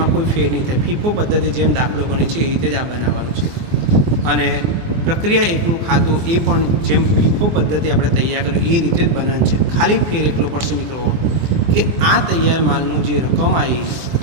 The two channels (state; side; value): late; left; 24 ms